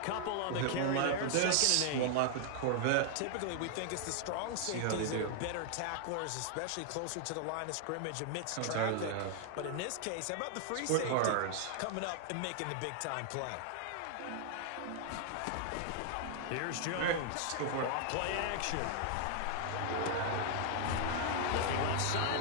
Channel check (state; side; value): different; both; correlation 0.00